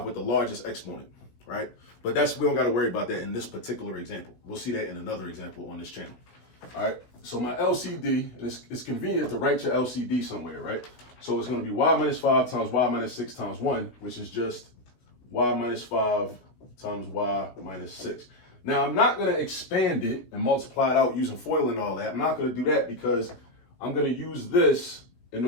with the largest exponent, right? But we don't got to worry about that in this particular example. We'll see that in another example on this channel. All right. So my LCD, and it's convenient to write your LCD somewhere, right? So it's going to be y minus 5 times y minus 6 times 1, which is just y minus 5 times y minus 6. Now, I'm not going to expand it and multiply it out using FOIL and all that. I'm not going to do that because I'm going to use this in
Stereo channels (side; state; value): right; late; 16 ms